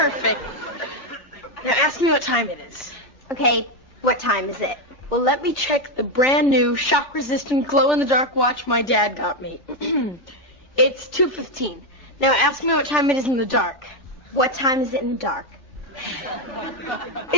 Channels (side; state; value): right; late; 3.4 ms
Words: Now ask me what time it is. Okay, what time is it? Well, let me check the brand new shock-resistant glow-in-the-dark watch my dad got me. It's 2:15. Now ask me what time it is in the dark. What time is it in the dark?